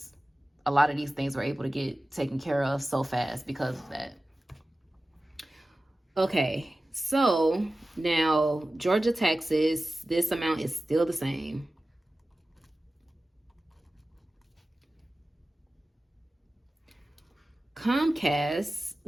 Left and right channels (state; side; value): normal; both; correlation 0.95